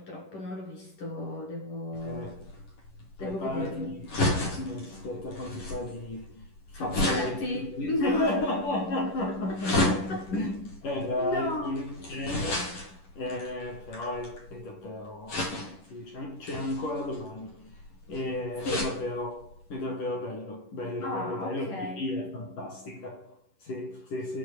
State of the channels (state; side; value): late; right; 10 ms